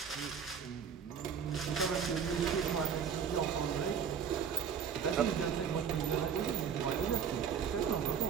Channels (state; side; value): quieter; left; 7.3 dB